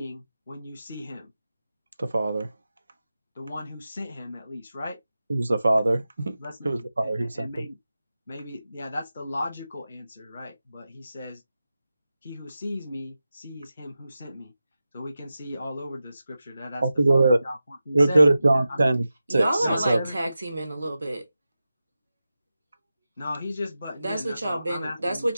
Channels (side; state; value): both; inverted; correlation -0.93